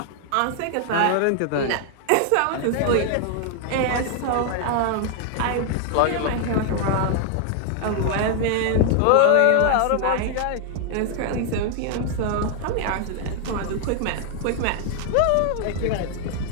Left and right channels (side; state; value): both; different; correlation 0.00